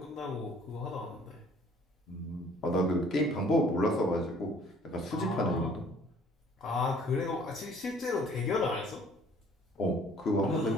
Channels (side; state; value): both; normal; correlation 0.56